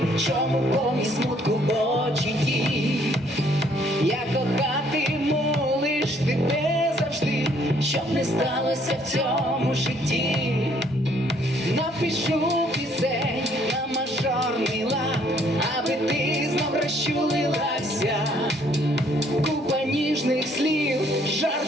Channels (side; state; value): both; normal; correlation 0.64